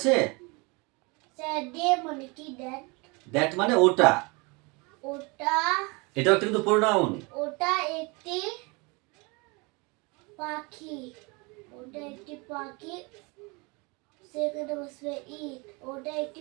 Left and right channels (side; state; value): left; quieter; 28.3 dB